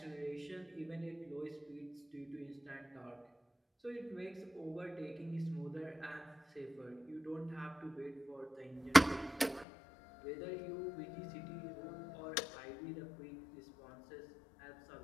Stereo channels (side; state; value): right; drops out; at 9.7 s